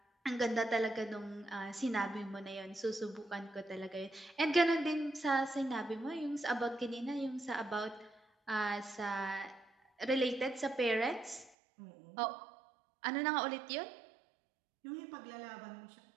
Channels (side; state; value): left; drops out; at 11.6 s